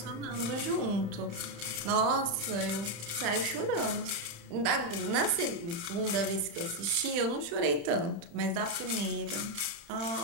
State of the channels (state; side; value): late; left; 35 ms